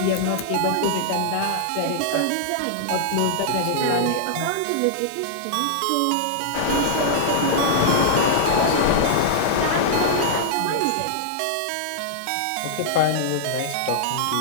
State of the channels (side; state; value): both; different; correlation -0.01